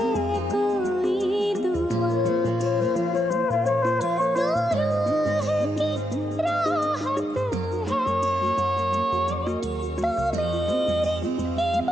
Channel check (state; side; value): normal; both; correlation 0.82